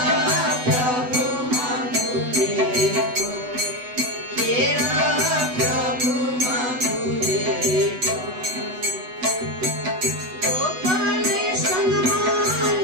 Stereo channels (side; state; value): left; late; 8.0 ms